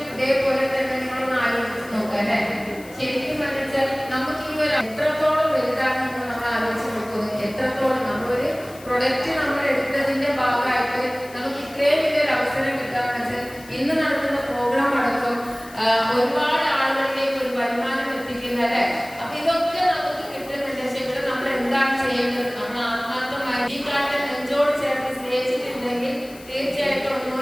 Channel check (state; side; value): noise; left; hiss, 21 dB below the sound